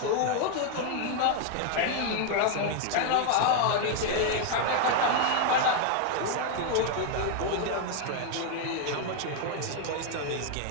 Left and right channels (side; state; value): both; different; correlation 0.00